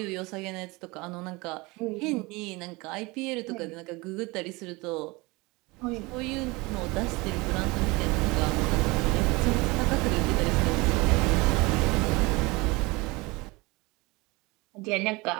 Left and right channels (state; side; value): quieter; left; 24.2 dB